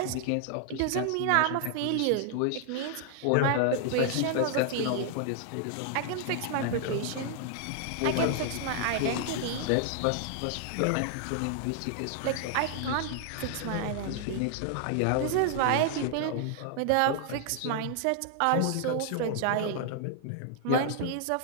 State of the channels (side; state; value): both; different; correlation 0.00